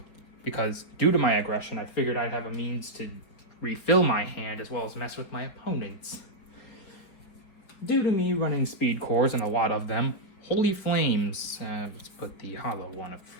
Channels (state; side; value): late; right; 4.9 ms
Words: because due to my aggression, I figured I'd have a means to refill my hand as well as mess with my opponents. Due to me running speed cores and a lot of them, Holy Flames, let's put the hollow one up